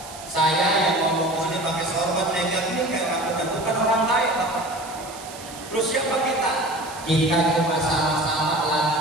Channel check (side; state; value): right; noise; hiss, 16 dB below the sound